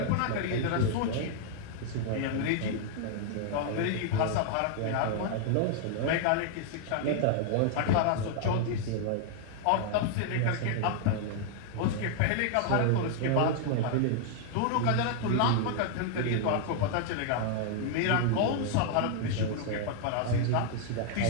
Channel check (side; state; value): both; different; correlation 0.00